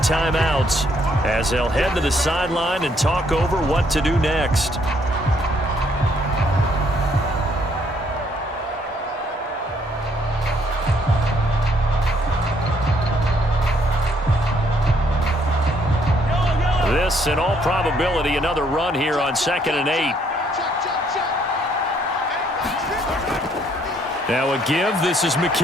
as they'll head to the sideline and talk over what to do next. This, in all probability, another run here on 2nd and 8. Now a give. This is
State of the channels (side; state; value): both; normal; correlation 0.68